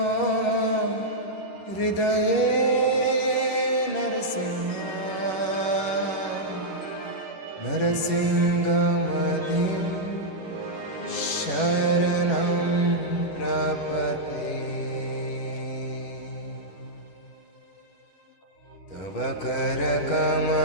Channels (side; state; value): right; late; 10 ms